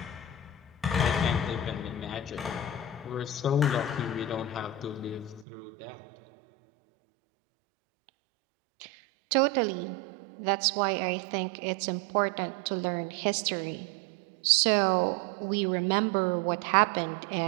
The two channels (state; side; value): drops out; left; at 5.5 s